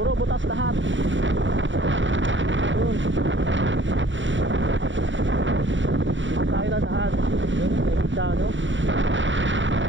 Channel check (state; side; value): late; left; 0.55 ms